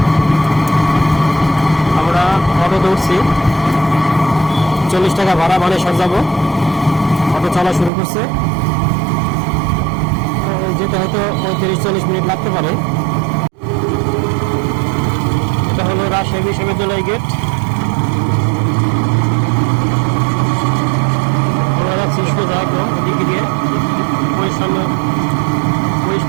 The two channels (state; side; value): drops out; left; at 7.9 s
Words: আমরা অটোতে উঠছি, 40 টাকা ভাড়া, বানেশ্বর যাব। অটো চলা শুরু করছে, যেতে হয়তো 35-40 মিনিট লাগতে পারে। এটা হলো রাজশাহী বিশ্ববিদ্যালয় গেট। আমরা যাচ্ছি সোজা একদম দিকে দিয়ে,